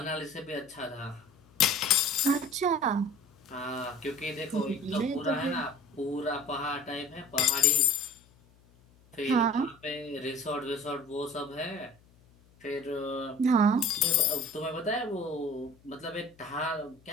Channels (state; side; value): noise; left; hum, 29 dB below the sound